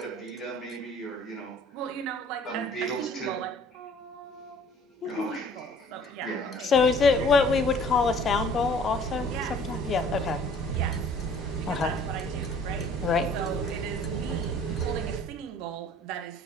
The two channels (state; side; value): normal; both; correlation 0.53